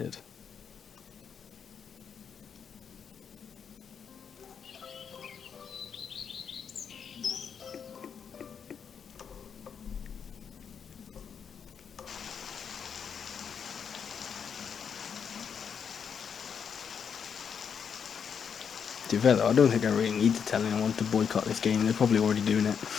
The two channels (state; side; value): quieter; right; 7.1 dB